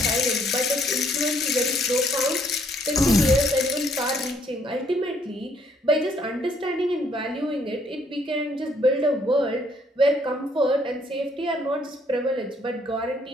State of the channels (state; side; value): normal; both; correlation 0.67